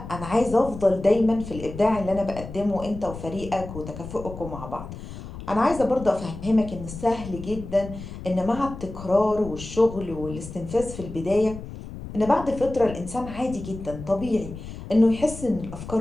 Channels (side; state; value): left; noise; rumble, 11 dB below the sound